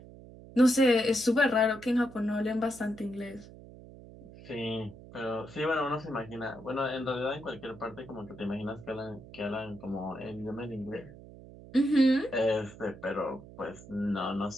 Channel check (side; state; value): right; noise; hum, 18 dB below the sound